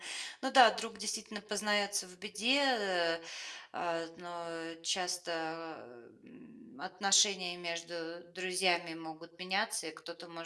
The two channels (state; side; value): identical; both; correlation 1.00